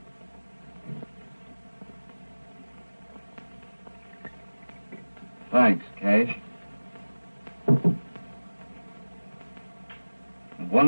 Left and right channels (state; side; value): inverted; both; correlation -1.00